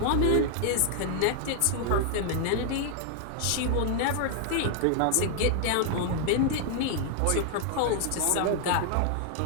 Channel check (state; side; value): different; both; correlation 0.00